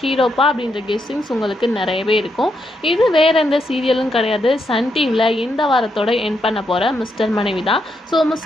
ஹீரோப்பா அப்படின்ற கெஸ்ஸிங்ஸ் உங்களுக்கு நிறையவே இருக்கும். இது வேறு எந்த சீரியலும் கிடையாது. சன் டிவியில் இந்த வாரத்தோட எண்ட் பண்ண போகிற மிஸ்டர் மனைவி தான். ஸோ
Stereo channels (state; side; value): normal; both; correlation 0.80